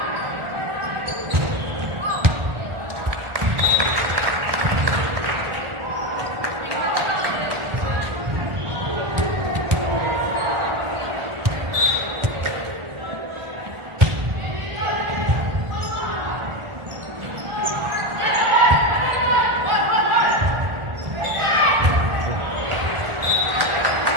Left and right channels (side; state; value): left; late; 1.4 ms